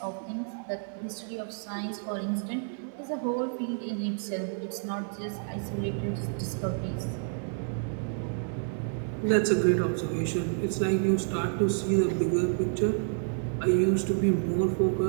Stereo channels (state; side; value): silent; left; 58 dB below the other